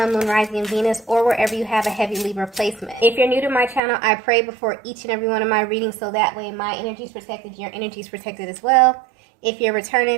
Moon, Rising, and Venus, or wherever you have a heavy Libra placement. If you're new to my channel, I pray before each and every one of my readings so that way my energy is protected, your energy is protected as well. If you're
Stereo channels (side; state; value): left; drops out; at 3.8 s